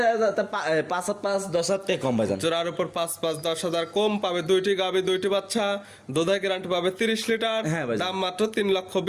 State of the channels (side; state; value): both; identical; correlation 1.00